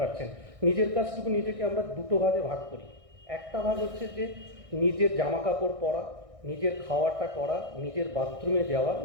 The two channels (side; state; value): left; late; 1.6 ms